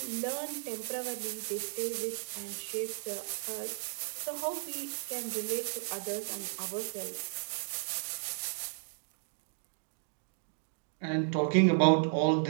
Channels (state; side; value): silent; left; digital silence